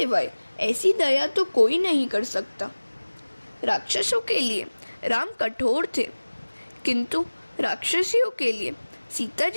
ऐसी दया तो कोई नहीं कर सकता। राक्षसों के लिए राम कठोर थे, किंतु राक्षसियों के लिए सीता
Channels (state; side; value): inverted; both; correlation -1.00